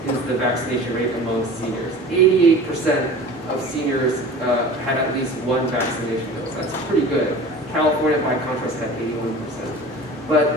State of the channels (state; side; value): normal; both; correlation 0.39